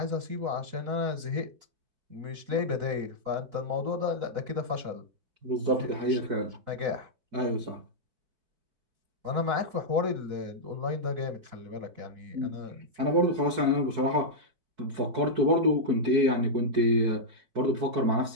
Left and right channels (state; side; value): late; left; 4.6 ms